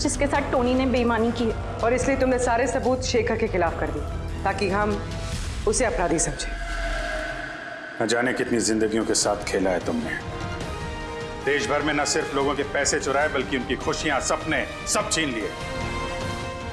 साथ टोनी ने बेईमानी की है। और इसलिए तुमने सारे सबूत शेखर के खिलाफ कर दिए ताकि हम उसे अपराधी समझें। न जाने कितनी जिंदगियों के साथ खेला है तुमने। देश भर में न सिर्फ लोगों के पैसे चुराए बल्कि उनकी खुशियां, सपने सब छीन लिए।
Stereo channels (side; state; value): both; identical; correlation 1.00